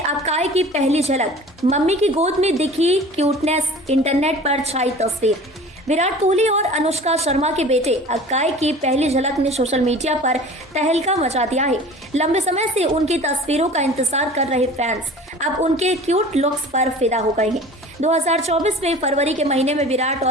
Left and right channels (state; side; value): normal; both; correlation 0.42